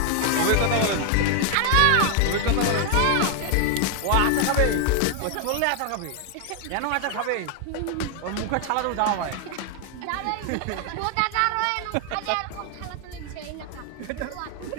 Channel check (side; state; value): both; different; correlation 0.00